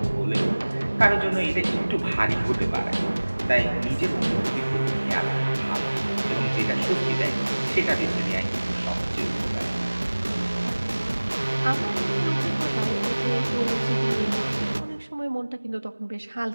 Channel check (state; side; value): inverted; both; correlation -1.00